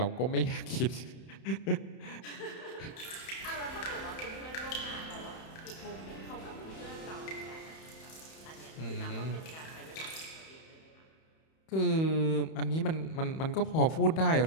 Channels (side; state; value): right; late; 31 ms